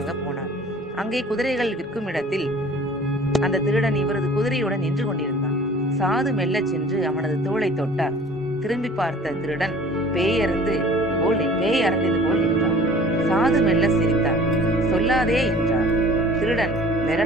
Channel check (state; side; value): normal; both; correlation 0.48